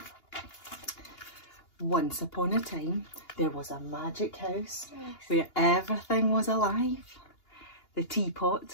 Once upon a time, there was a magic house where everything was alive. The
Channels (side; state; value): right; late; 2.8 ms